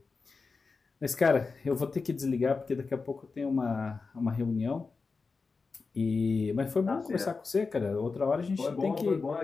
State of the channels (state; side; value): quieter; right; 4.5 dB